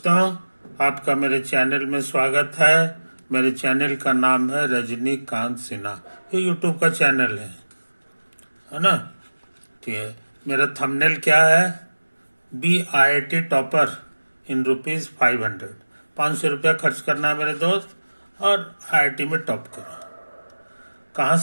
आपका मेरे चैनल में स्वागत है। मेरे चैनल का नाम है रजनीकांत सिन्हा। ये यूट्यूब का चैनल है ना। ठीक है। मेरा थंबनेल क्या है? BIT topper in ₹500। 500 रुपया खर्च करना है मेरे दोस्त, और IIT में टॉप करो। कहाँ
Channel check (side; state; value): both; inverted; correlation -1.00